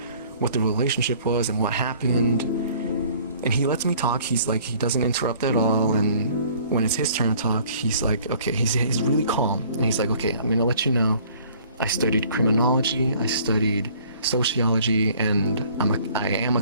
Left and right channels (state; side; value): inverted; both; correlation -0.55